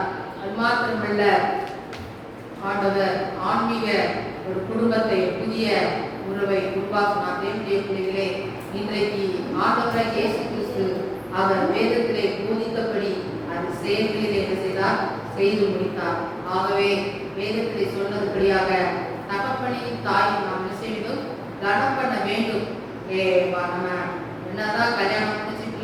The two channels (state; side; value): identical; both; correlation 1.00